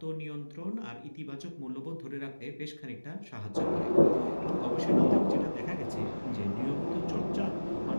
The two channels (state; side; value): inverted; both; correlation -1.00